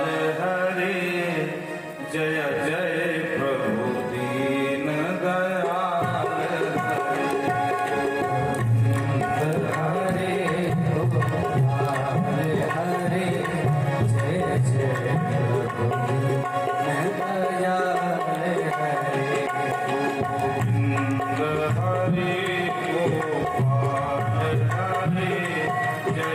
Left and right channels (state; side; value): identical; both; correlation 1.00